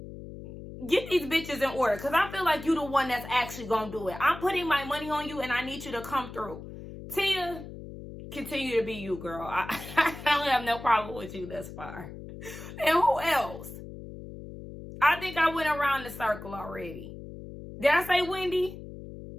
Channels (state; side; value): noise; left; hum, 12 dB below the sound